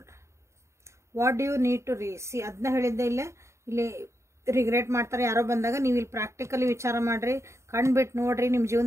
What do you need to see ಅದನ್ನ ಹೇಳಿದ್ದೆ. ಇಲ್ಲಿ ರಿಗ್ರೆಟ್ ಮಾಡ್ತಾರೆ ಯಾರೋ ಬಂದಾಗ ನೀವು ಇಲ್ಲಿ ಪ್ರಾಕ್ಟಿಕಲಿ ವಿಚಾರ ಮಾಡಿರಿ, ಕಣ್ಬಿಟ್ಟು ನೋಡ್ರಿ, ನಿಮ್ಮ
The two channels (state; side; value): late; left; 0.14 ms